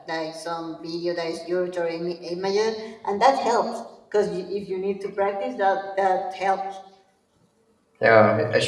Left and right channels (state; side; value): identical; both; correlation 1.00